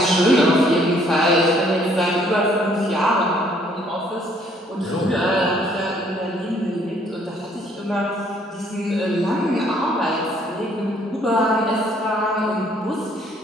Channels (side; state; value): both; normal; correlation 0.63